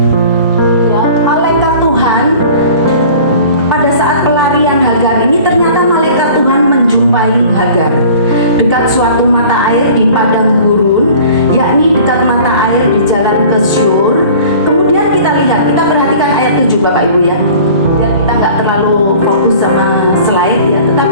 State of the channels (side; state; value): both; inverted; correlation -0.45